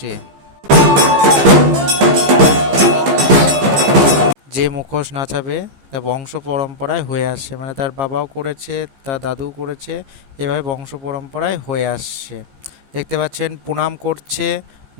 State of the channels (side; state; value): left; late; 15 ms